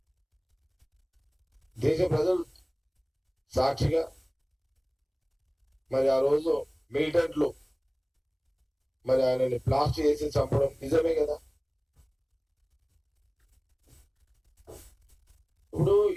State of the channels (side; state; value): both; identical; correlation 1.00